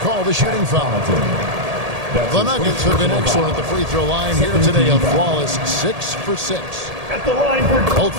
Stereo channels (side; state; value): left; late; 1.8 ms